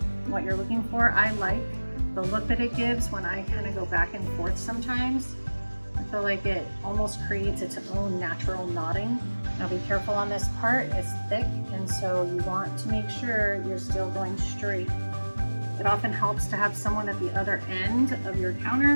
what you're looking for. I like the look that it gives when I kind of go back and forth sometimes. I feel like it almost creates its own natural knotting. Now be careful on this part, it's thick, and so you want to make sure you're still going straight. It often helps to have someone at the other end of your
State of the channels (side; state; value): both; inverted; correlation -1.00